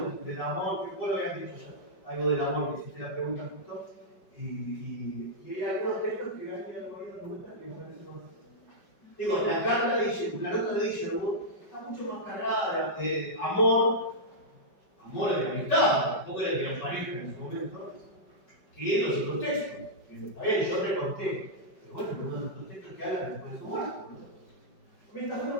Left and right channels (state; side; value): late; right; 5.2 ms